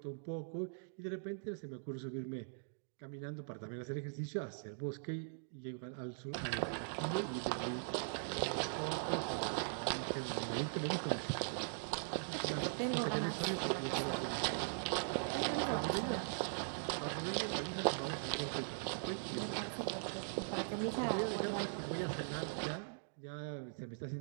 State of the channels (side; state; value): left; silent; digital silence